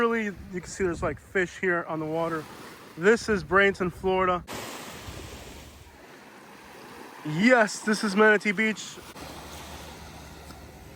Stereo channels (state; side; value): identical; both; correlation 1.00